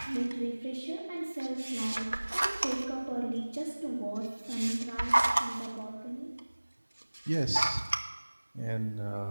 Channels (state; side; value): inverted; both; correlation -1.00